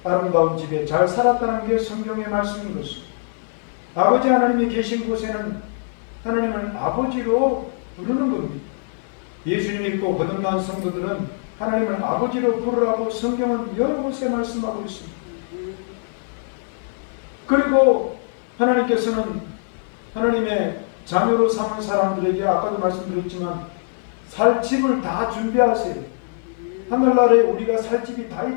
아름다운 집에 잘 살았다는 게 성경의 말씀인 것입니다. 아버지 하나님이 계신 곳에는 하나님을 아버지로 부르는 겁니다. 예수님 믿고 거듭난 성도들은 하나님을 아버지로 부르라고 성경은 여러 곳에 말씀하고 있습니다. 그리고 하나님께서는 하나님의 자녀로 삼은 사람들에게 아까도 말씀드렸지만 살 집을 다 준비하세요. 하늘나라에 우리가 살 집이 다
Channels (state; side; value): silent; right; 56 dB below the other